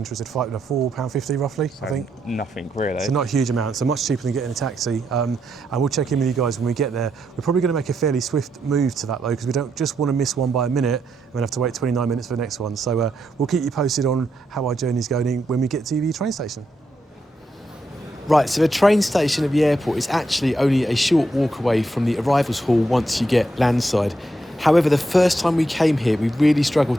£4.50 roughly, I think. Nothing, really. So not a huge amount, so much cheaper than getting a taxi. And we'll check in with you guys when we get there. We're probably going to make a fairly swift move to that though, because we don't just want to miss one by a minute and then have to wait 29 minutes for the next one. So we'll keep you posted on how our journey's going when we get to the train station. Right, so the train station at the airport is actually only a short walk away from the arrivals hall once you get landside. However, the first time we came here, we really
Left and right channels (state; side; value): normal; both; correlation 0.81